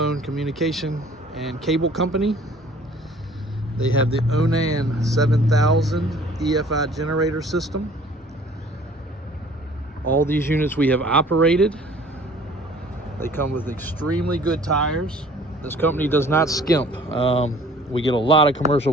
communication and cable company. They have the Onan 7000 EFI generator system. All these units we have operated. They come with extremely good tires. This company does not skimp. We get a lot of commercial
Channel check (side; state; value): both; normal; correlation 0.52